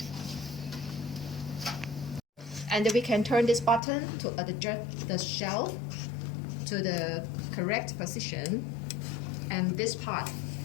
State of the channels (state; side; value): drops out; right; at 3.8 s